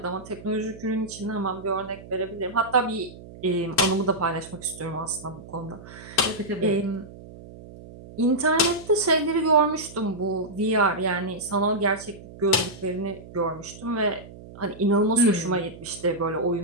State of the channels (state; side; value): noise; right; hum, 17 dB below the sound